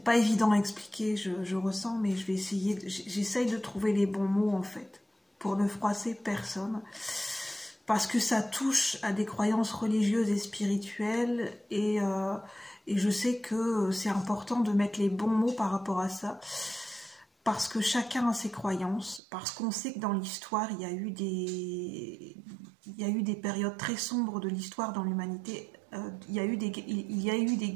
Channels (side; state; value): left; drops out; at 19.2 s